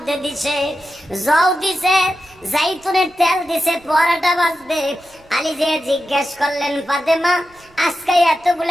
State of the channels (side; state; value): right; noise; rumble, 29 dB below the sound